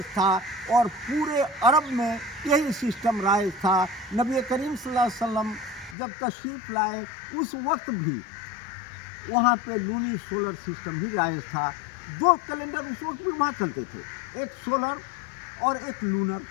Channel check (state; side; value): drops out; right; at 6.0 s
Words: था और पूरे अरब में यही सिस्टम राइज था। नबी करीम सल्लल्लाहु अलैहि वसल्लम जब तशरीफ़ लाए, उस वक्त भी वहाँ पे लूनी सोलर सिस्टम ही राइज था। 2 कैलेंडर उस वक्त भी वहाँ चलते थे, एक सोलर और एक लूनर,